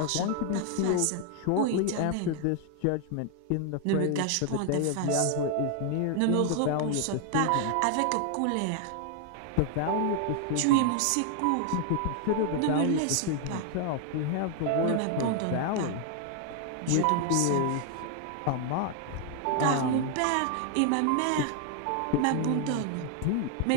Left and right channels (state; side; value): different; both; correlation 0.00